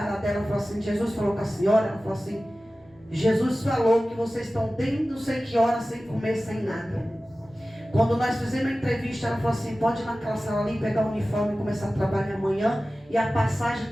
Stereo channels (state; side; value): normal; both; correlation 0.96